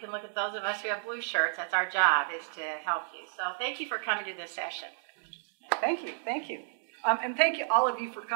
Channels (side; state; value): left; silent; digital silence